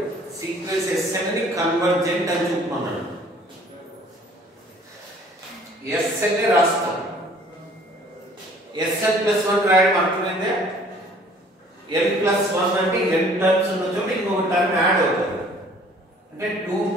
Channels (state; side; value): normal; both; correlation 0.55